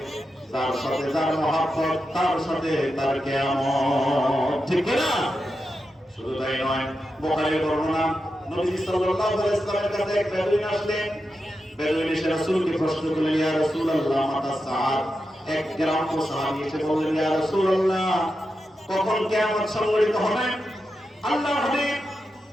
তার সাথে যার মহব্বত তার সাথে তার কিয়ামত। ঠিক না? শুধু তাই নয়, বুখারীর বর্ণনা, নবী সাল্লাল্লাহু আলাইহি ওয়াসাল্লামের কাছে এক বেদুইন আসলেন। বেদুইন এসে রাসূলকে প্রশ্ন করলেন, ইয়া রাসূলুল্লাহ মাতা সাআত। এক গ্রাম্য সাহাবী এসে বললেন, ইয়া রাসূলুল্লাহ কখন কিয়ামত সংঘটিত হবে? আল্লাহর হাবিব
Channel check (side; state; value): both; normal; correlation 0.88